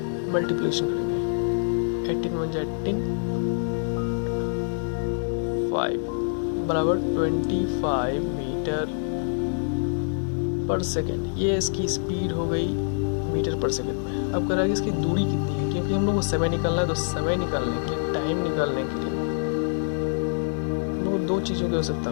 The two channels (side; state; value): right; silent; digital silence